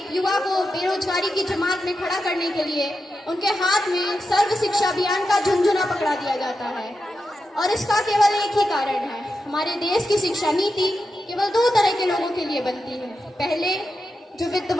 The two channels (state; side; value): normal; both; correlation 0.89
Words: युवा को बेरोजगारी की जमात में खड़ा करने के लिए उनके हाथ में सर्व शिक्षा अभियान का झुंझुना पकड़ा दिया जाता है। और इसका केवल एक ही कारण है, हमारे देश की शिक्षा नीति केवल 2 तरह के लोगों के लिए बनती है, पहले जो